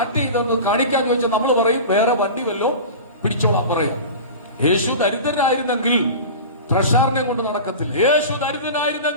ചെയ്തൊന്ന് കാണിക്കാൻ ചോദിച്ചാൽ നമ്മൾ പറയും വേറെ വണ്ടി വല്ലോ പിടിച്ചോളാം പറയും. യേശു ദരിദ്രനായിരുന്നെങ്കിൽ ട്രഷാറിനെ കൊണ്ട് നടക്കത്തില്ല. യേശു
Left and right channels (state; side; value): inverted; both; correlation -0.32